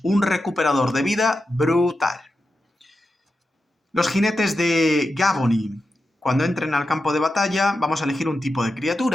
un recuperador de vida brutal. Los jinetes de Gavony. Cuando entren al campo de batalla, vamos a elegir un tipo de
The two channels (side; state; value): both; normal; correlation 0.89